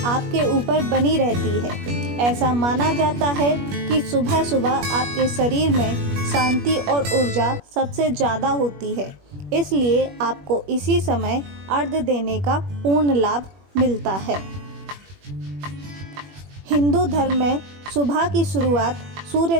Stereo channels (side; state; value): left; late; 21 ms